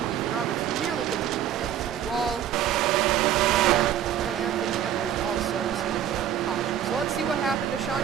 Roberts nearly gets into the outside wall. And Anthony Emery also spun out the caution. So let's see what happened to Sean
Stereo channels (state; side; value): quieter; left; 10.2 dB